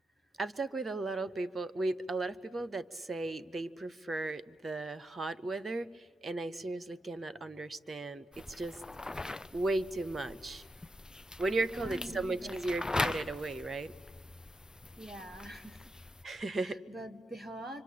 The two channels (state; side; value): normal; both; correlation 0.86